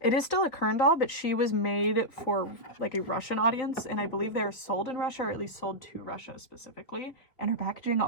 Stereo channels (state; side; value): late; right; 3.4 ms